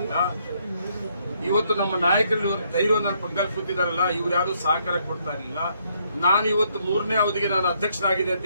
ಇವತ್ತು ನಮ್ಮ ನಾಯಕರು ಧೈರ್ಯವನ್ನು ಪಕ್ಕದಲ್ಲಿ ಕೂತಿದಾರಲ್ಲ, ಇವ್ರು ಯಾರು ಸಹಕಾರ ಕೊಡ್ತಾ ಇರಲಿಲ್ಲ. ನಾನು ಇವತ್ತು 3ನೇ ಅವಧಿಗೆ ನಾನು ಅಧ್ಯಕ್ಷನಾಗಿದೆ ಅಂತ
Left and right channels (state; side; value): inverted; both; correlation -0.71